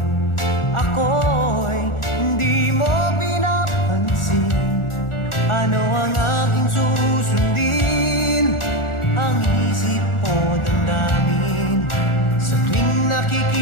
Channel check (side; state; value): right; late; 1.4 ms